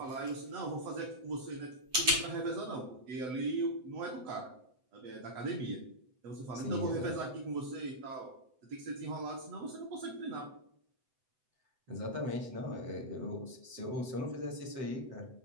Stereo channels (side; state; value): left; late; 7.9 ms